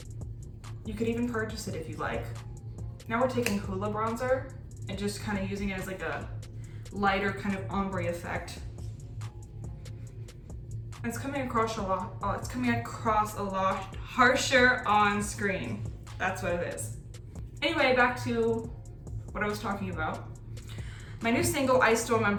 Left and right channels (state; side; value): identical; both; correlation 1.00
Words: You could even purchase it if you like. Now we're taking Hoola bronzer and just kind of using it as like a lighter kind of ombre effect. It's coming across a lot. Oh, it's coming across a lot harsher on screen. That's what it is. Anyway, back to what I was talking about. My new single, I Still